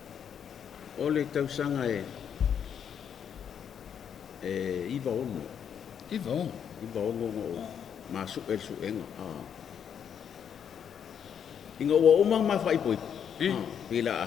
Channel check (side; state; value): right; quieter; 8.2 dB